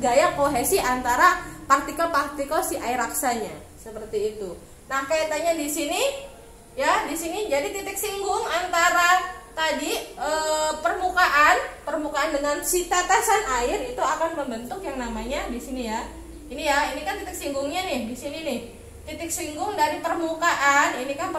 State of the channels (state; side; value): identical; both; correlation 1.00